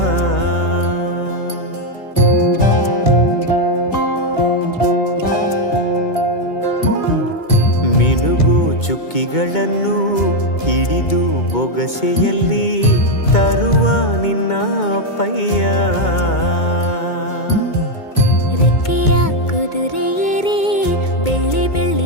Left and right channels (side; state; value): right; late; 2.2 ms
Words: ಮಿನುಗು ಚುಕ್ಕಿಗಳನ್ನು ಹಿಡಿದು ಬೊಗಸೆಯಲ್ಲಿ ತರುವ ನಿನ್ನ ಅಪ್ಪಯ್ಯ. ರೆಕ್ಕೆಯ ಕುದುರೆ ಏರಿ ಬೆಳ್ಳಿ